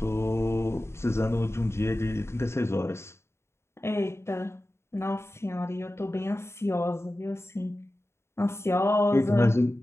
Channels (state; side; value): late; right; 0.13 ms